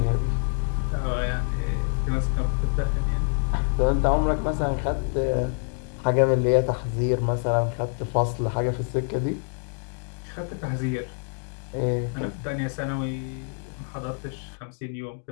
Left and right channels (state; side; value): silent; right; 60 dB below the other